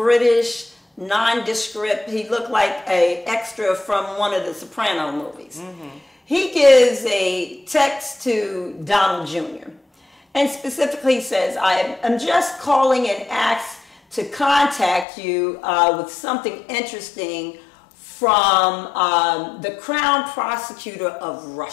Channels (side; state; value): right; drops out; at 15.1 s